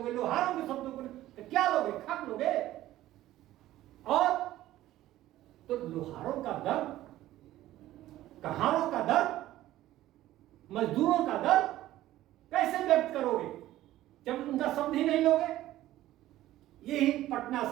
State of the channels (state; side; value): quieter; left; 14.7 dB